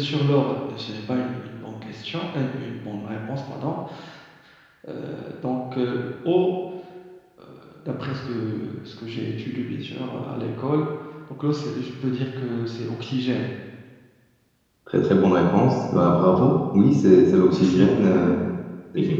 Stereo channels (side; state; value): both; identical; correlation 1.00